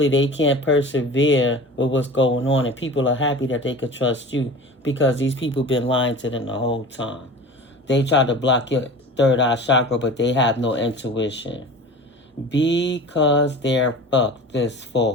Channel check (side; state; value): both; normal; correlation 0.37